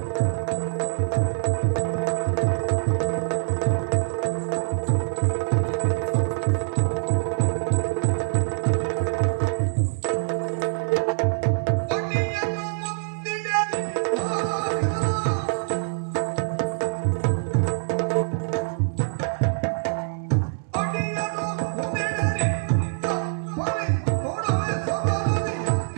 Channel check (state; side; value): silent; left; digital silence